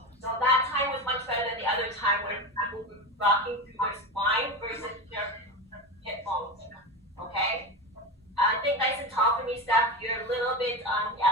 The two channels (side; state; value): both; normal; correlation 0.22